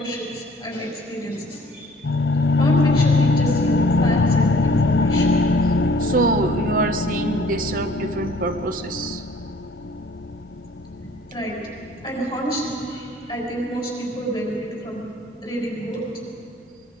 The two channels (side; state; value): both; normal; correlation 0.55